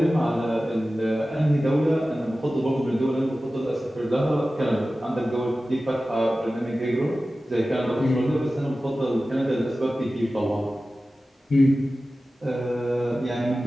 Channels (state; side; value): normal; both; correlation 0.95